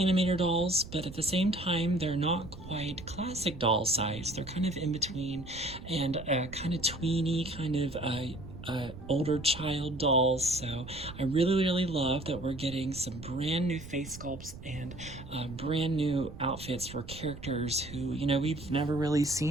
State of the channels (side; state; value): right; noise; rumble, 14 dB below the sound